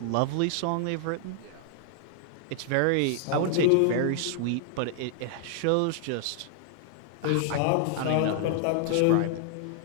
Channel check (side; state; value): both; different; correlation 0.00